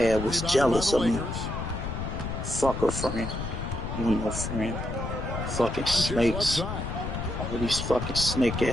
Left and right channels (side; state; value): left; noise; rumble, 4 dB below the sound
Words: was Rebounded jealous by of the me. Lakers. Fuck a friend. You ain't no friend. Fucking Doncic left snakes. side. All these fucking snake